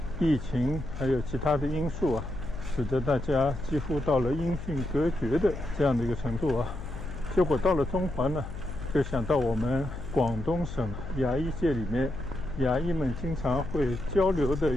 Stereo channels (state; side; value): noise; left; hum, 9 dB below the sound